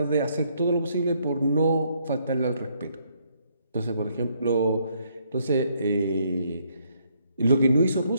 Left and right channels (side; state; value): both; inverted; correlation -0.71